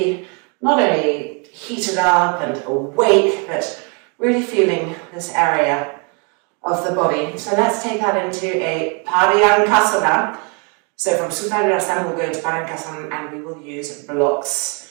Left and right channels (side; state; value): left; quieter; 35.5 dB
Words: not only heated up and awake, but really feeling this area of the body. So let's take that into a Paryankasana. So from Sarvangasana we'll go into Paryankasana and we will use